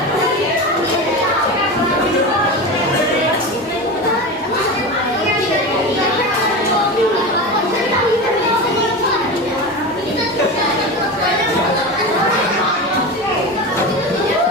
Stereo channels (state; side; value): normal; both; correlation 0.25